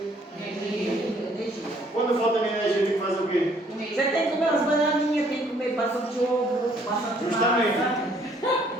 Energia. Quando falta minha energia, eu tenho que fazer o quê? Você tem que comer umas bananinhas, tem que comer bastante ovo, bastante Justamente. massa.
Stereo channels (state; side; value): normal; both; correlation 0.63